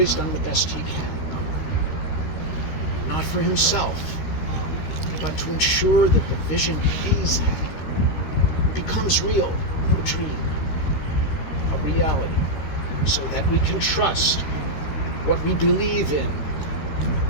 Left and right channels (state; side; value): late; right; 13 ms